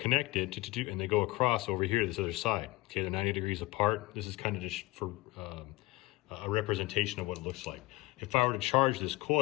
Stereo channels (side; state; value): right; quieter; 20.2 dB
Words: and they go across over here to this other side. Okay, they're 90 degrees apart. This is kind of just for a representation of what it looks like. If I were to charge this